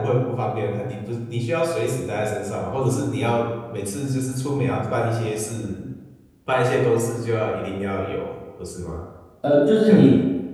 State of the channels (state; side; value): identical; both; correlation 1.00